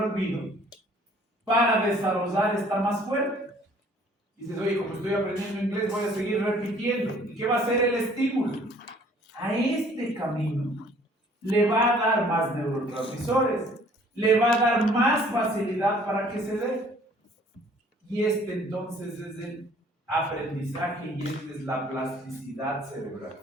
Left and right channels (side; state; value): both; normal; correlation 0.57